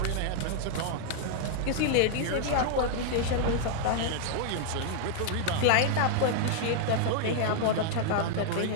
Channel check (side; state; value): both; different; correlation -0.01